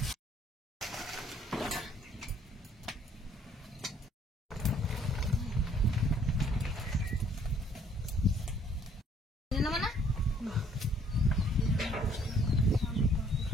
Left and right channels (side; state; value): both; normal; correlation 0.61